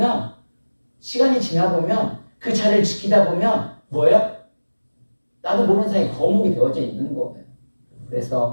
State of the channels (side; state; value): both; inverted; correlation -1.00